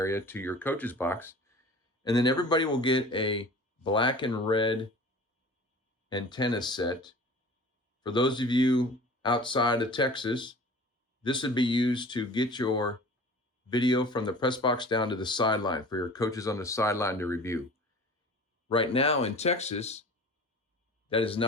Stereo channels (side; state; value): both; normal; correlation 0.41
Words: to your coach's box. And then everybody will get a black and red antenna set. For those of you outside of Texas, this would be used to get your video from the press box down to the sideline for your coaches on the sideline to review. Right now in Texas, that is